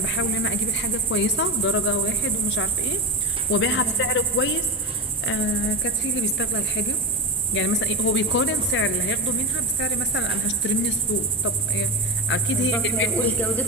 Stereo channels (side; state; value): both; normal; correlation 0.21